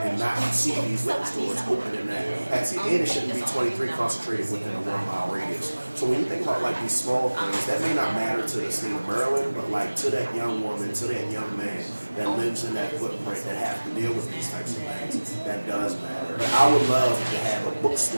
not see these liquor stores open in that capacity. And it shouldn't be 23 concentrated within a 1 mile radius. So when you think about like these small things, that may not matter to the state of Maryland, but like to that young woman, to that young man that lives in that footprint that have to deal with these types of things, that does matter. I would love to have a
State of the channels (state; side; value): inverted; both; correlation -1.00